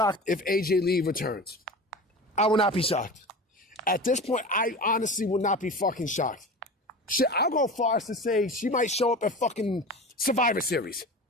if AJ Lee returns. I will not be shocked. At this point, I honestly will not be fucking shocked. Shit, I'll go far as to say she might show up at fucking Survivor Series.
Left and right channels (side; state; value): both; normal; correlation 0.33